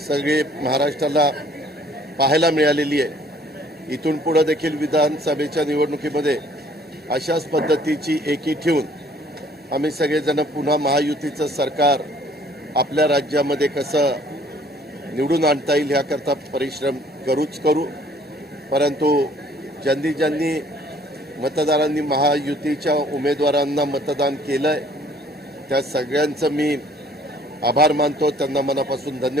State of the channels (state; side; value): normal; both; correlation 0.58